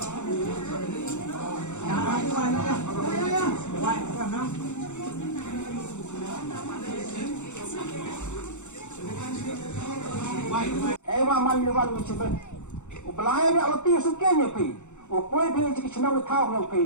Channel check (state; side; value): late; right; 0.84 ms